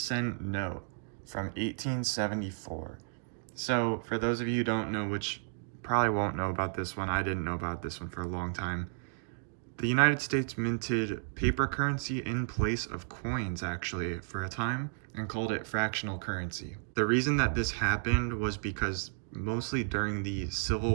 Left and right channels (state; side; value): silent; left; digital silence